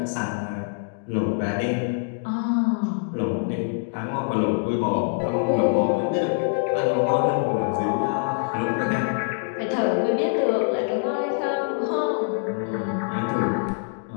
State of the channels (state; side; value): silent; right; digital silence